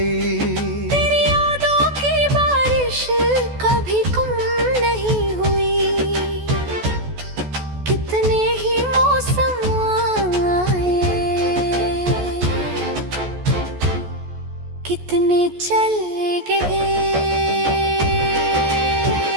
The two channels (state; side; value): late; left; 14 ms